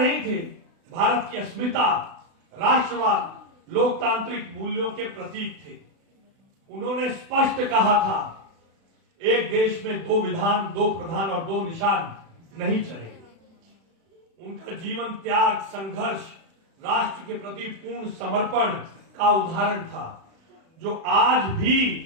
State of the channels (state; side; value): late; left; 36 ms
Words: थे, भारत की अस्मिता, राष्ट्रवाद, लोकतांत्रिक मूल्यों के प्रतीक थे। उन्होंने स्पष्ट कहा था, एक देश में दो विधान, दो प्रधान और दो निशान नहीं चलेंगे। उनका जीवन त्याग, संघर्ष, राष्ट्र के प्रति पूर्ण समर्पण का उदाहरण था, जो आज